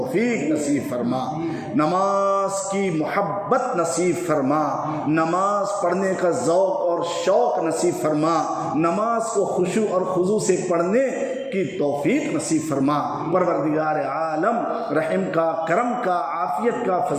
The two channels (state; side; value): identical; both; correlation 1.00